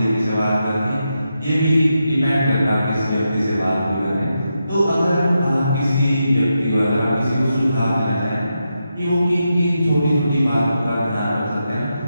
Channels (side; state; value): both; inverted; correlation -0.86